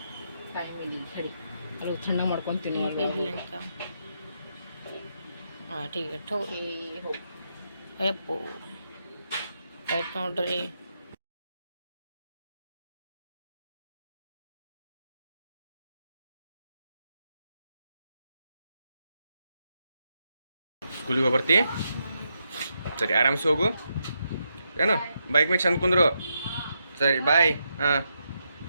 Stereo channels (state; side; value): inverted; both; correlation -0.82